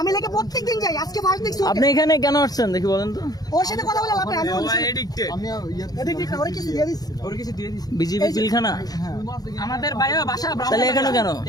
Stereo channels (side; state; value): right; late; 0.19 ms